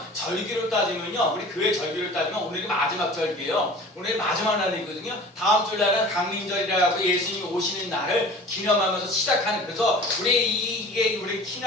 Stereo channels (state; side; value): normal; both; correlation 0.42